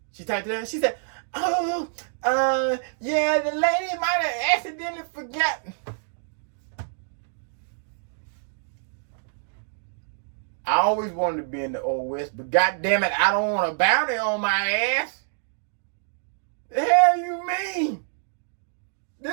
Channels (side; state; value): left; silent; digital silence